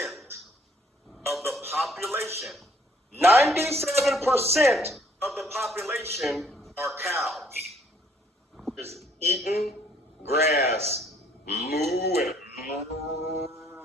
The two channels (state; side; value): normal; both; correlation 0.63